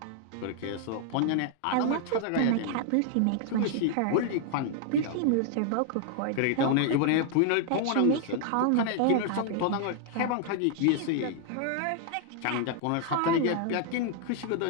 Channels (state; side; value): different; both; correlation 0.00